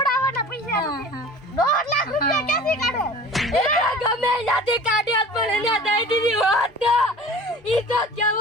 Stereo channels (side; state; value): both; normal; correlation 0.42